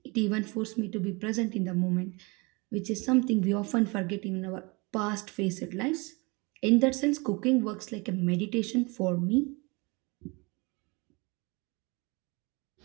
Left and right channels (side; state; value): left; quieter; 27.5 dB